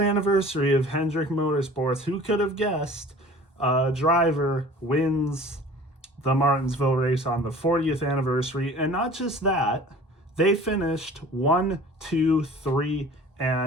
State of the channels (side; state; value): both; normal; correlation 0.45